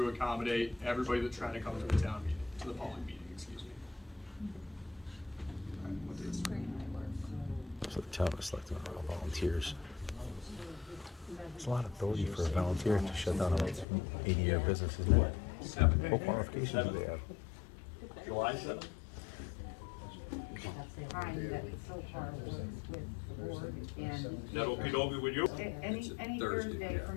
accommodate everybody that's trying to come to the town meeting, to the public meeting, excuse me. So the town is selecting all volunteers. There's a lot of ability for a volunteer to shut down an 80-year business, isn't it? What qualifications do they have? July 7th? Time that so far works with the board and. Is that okey-dokey with you? Any Thursday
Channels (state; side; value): drops out; right; at 13.9 s